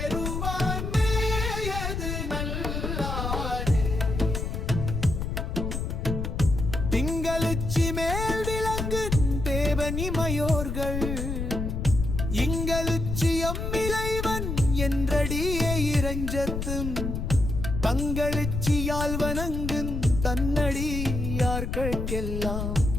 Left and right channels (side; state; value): left; noise; rumble, 3 dB below the sound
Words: மேயது நல்லாரே. திங்களுச்சி மேல் விளங்கு தேவனிமையோர்கள் இங்களுச்சி அம்மிளைவன் என்றடியே இறைஞ்சத்தும் தங்களுச்சியால் வணங்குன் தன்னடியார்கெல்லாம்